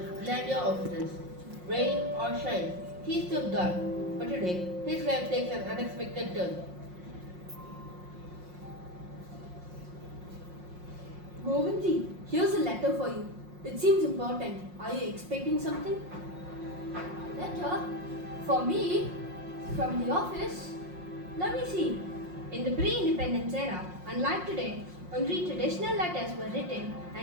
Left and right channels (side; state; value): left; late; 5.6 ms